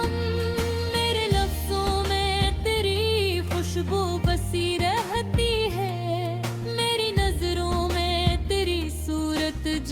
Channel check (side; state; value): both; identical; correlation 1.00